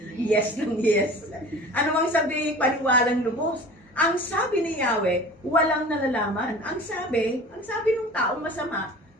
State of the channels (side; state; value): both; normal; correlation 0.41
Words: Yes lang, yes. Ano mang sabi, paniwalang lubos. Ang sabi ni Yahweh, walang nalalaman. Ang sabi ng taong masama,